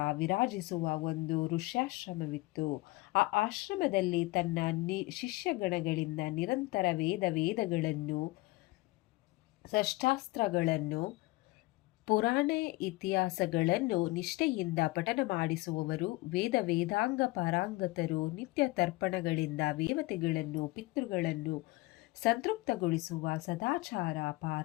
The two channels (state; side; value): quieter; right; 21.5 dB